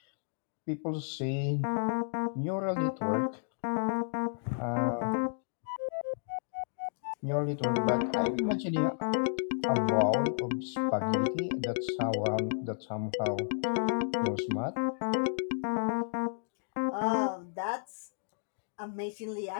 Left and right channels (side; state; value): right; silent; digital silence